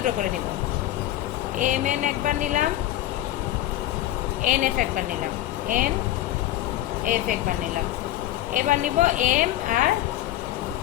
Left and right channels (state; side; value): quieter; right; 14.4 dB